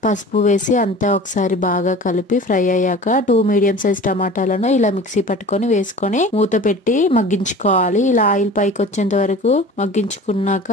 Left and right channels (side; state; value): both; normal; correlation 0.40